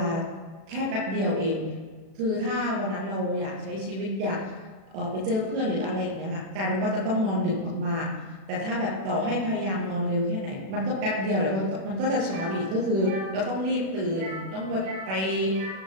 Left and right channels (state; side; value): late; left; 37 ms